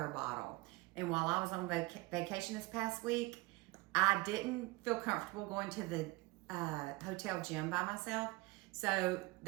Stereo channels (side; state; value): left; quieter; 22.2 dB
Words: bottle. And while I was on vacation this past week, I didn't feel comfortable going to the hotel gym by myself. So